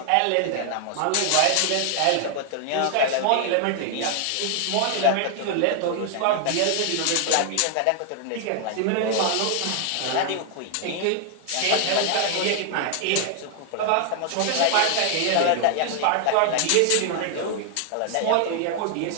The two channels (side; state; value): both; different; correlation 0.00